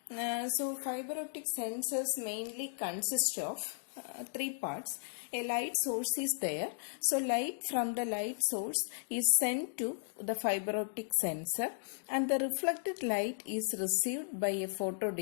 So fiber optic sensors mainly consist of three parts. A light source is there. So light from the light source is sent to the fiber optic sensor, and the reflected light is received by a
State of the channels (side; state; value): right; silent; digital silence